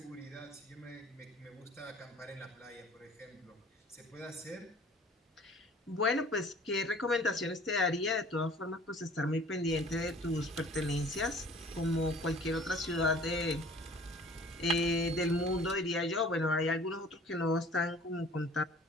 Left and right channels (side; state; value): both; normal; correlation 0.49